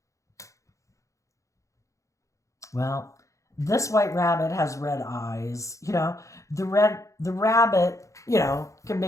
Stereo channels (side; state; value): right; late; 0.15 ms